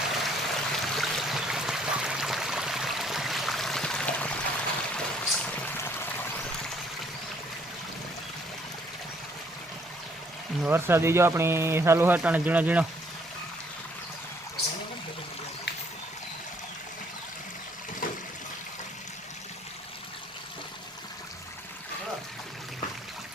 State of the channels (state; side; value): normal; both; correlation 0.65